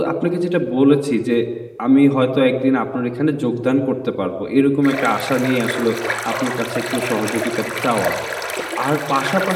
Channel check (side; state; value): both; identical; correlation 1.00